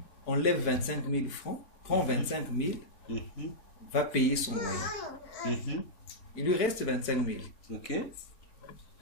enlève 25 000 francs, prend 25 000, va payer son loyer. Il lui reste 25 000.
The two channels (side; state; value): right; late; 4.5 ms